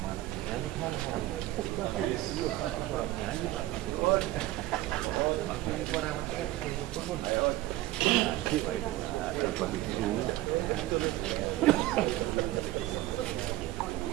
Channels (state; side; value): quieter; left; 16.6 dB